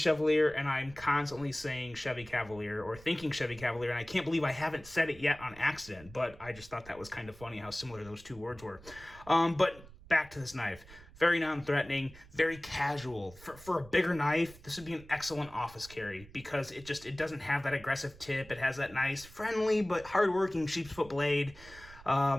and I'm constantly saying Chevy Cavalier or thinking Chevy Cavalier, and I can't believe I haven't said it yet on accident, but I just thought that was kind of funny how similar those two words were. But back to this knife. Very non-threatening, very casual. For a bigger knife, this would be an excellent office carry because it doesn't have that aggressive tip. It has that nice, friendly, but hardworking sheep's foot blade.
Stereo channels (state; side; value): noise; right; rumble, 20 dB below the sound